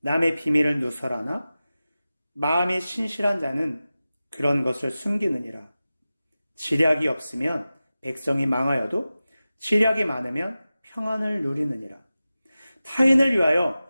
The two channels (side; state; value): both; inverted; correlation -0.95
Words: 비밀을 누설하나 마음이 신실한 자는 그런 것을 숨기느니라. 지략이 없으면 백성이 망하여도 지략이 많으면 평안을 누리느니라. 타인을 위하여